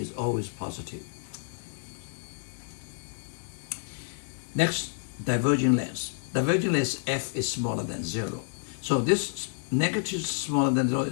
always positive. Next, diverging lens. Diverging lens F is smaller than 0. So this negative smaller than 0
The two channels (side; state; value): right; silent; digital silence